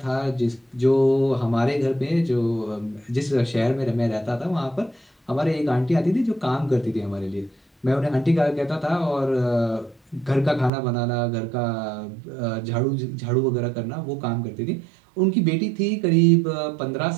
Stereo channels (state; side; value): drops out; left; at 10.7 s